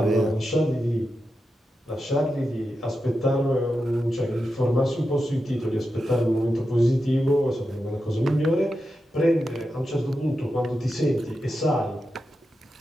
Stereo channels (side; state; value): both; normal; correlation 0.89